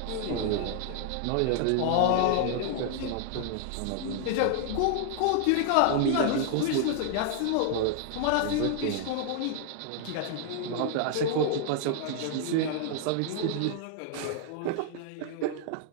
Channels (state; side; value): different; both; correlation 0.00